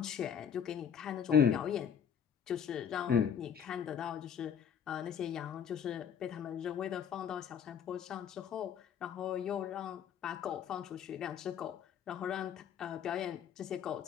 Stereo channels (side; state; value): right; quieter; 8.1 dB